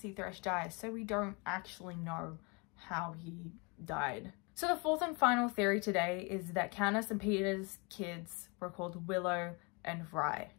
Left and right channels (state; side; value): quieter; right; 30.5 dB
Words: Thresh die, so we don't actually know how he died. So the fourth and final theory today is that Katniss and Peter's kids were called Willow and Rye.